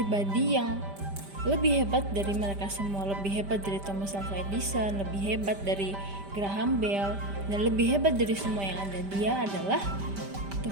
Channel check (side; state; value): left; late; 5.1 ms